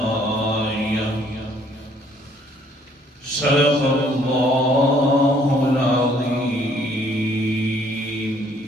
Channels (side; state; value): both; normal; correlation 0.63